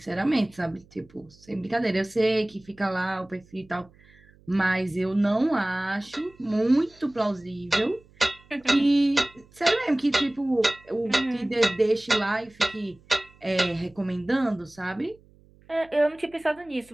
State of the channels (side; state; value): right; noise; hum, 28 dB below the sound